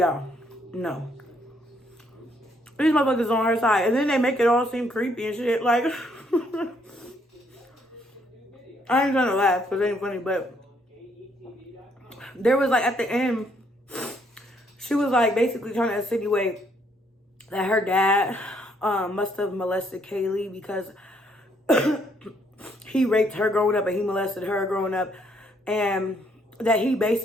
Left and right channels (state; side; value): normal; both; correlation 0.70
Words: no. These motherfuckers on her side. And then they make it all seem creepy and shit. Like, I ain't gonna laugh because it ain't funny, but there was, like, at the end, she was, like, basically trying to insinuate that her dad must have molested Kaylee because he raped her growing up and he molested her growing up. And that he